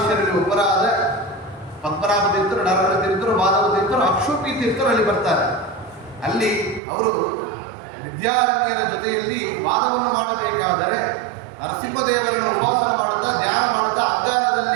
ಒಬ್ಬರಾದ ಪದ್ಮನಾಭ ತೀರ್ಥರು, ನರಹರ ತೀರ್ಥರು, ಮಾಧವ ತೀರ್ಥರು, ಅಕ್ಷೋಪಿ ತೀರ್ಥರು ಅಲ್ಲಿ ಬರ್ತಾರೆ. ಅಲ್ಲಿ ಅವರು ವಿದ್ಯಾರಣ್ಯರ ಜೊತೆಯಲ್ಲಿ ವಾದವನ್ನು ಮಾಡಬೇಕಾದರೆ ನರಸಿಂಹದೇವರನ್ನು ಉಪಾಸನ ಮಾಡುತ್ತಾ ಧ್ಯಾನ ಮಾಡುತ್ತಾ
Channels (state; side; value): drops out; left; at 6.8 s